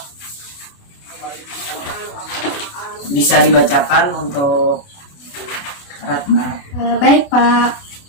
bisa dibacakan untuk Ratna. Baik Pak,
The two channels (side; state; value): right; late; 28 ms